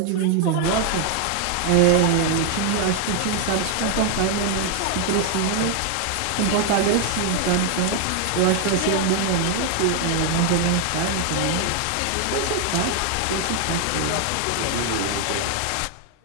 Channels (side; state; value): both; different; correlation 0.00